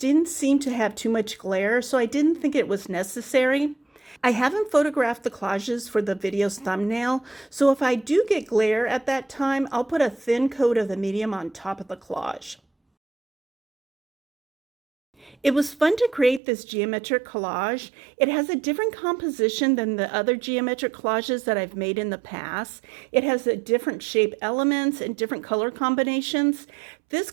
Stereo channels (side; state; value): left; drops out; at 16.4 s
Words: seem to have too much glare, so I didn't think it was necessary. I haven't photographed the collages for the video's thumbnail, so if I do get glare at that time, I'll put a thin coat of the medium on top of the collage. It was fun to create this geometric collage. It has a different composition than the other geometric collages that I've made in the past. It has a different shape elements and different color combinations. This